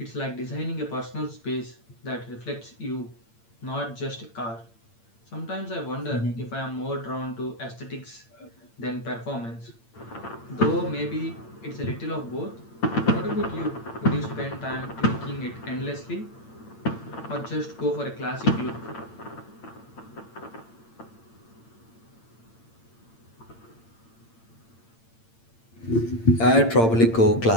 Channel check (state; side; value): late; right; 8.8 ms